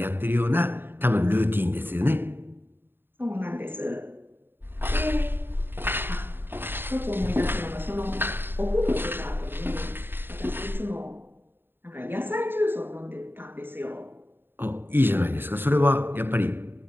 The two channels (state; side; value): late; left; 0.10 ms